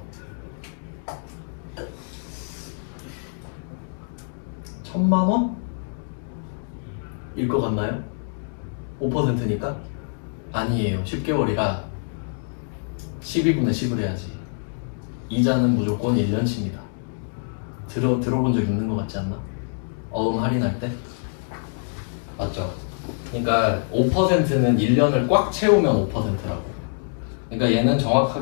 1,000만 원일 것 같나요? 5%니까? 아니에요. 10개월이라 12분의 10을 해야지. 이자는 무조건 1년치입니다. 들어본 적 있는 것 같지 않나? 어음 할인할 때? 맞죠? 그러니까 5%는 1년을 꽉 채우면 5%라고. 그러니까 얘는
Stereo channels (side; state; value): right; silent; digital silence